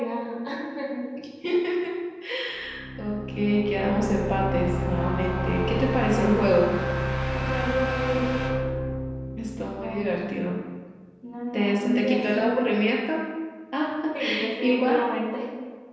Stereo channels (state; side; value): identical; both; correlation 1.00